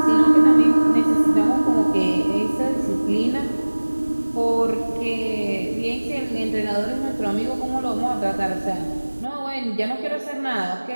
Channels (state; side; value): inverted; both; correlation -1.00